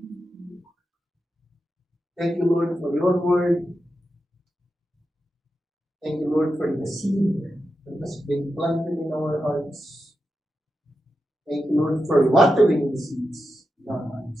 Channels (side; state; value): both; normal; correlation 0.89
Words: Thank you, Lord, for your word. Thank you, Lord, for the seed that has been planted in our hearts. Thank you, Lord, for watering the seeds in our